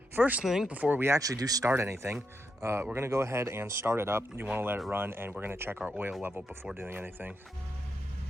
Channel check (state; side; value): normal; both; correlation 0.83